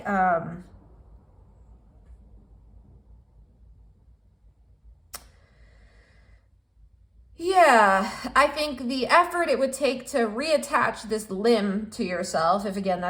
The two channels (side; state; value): both; identical; correlation 1.00